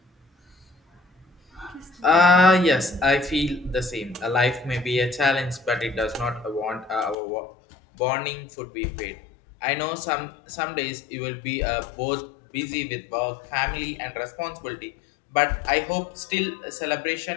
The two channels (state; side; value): drops out; right; at 7.2 s